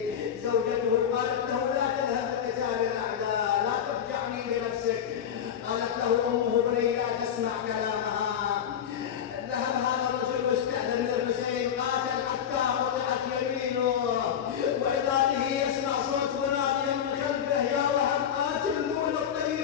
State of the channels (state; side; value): quieter; right; 8.9 dB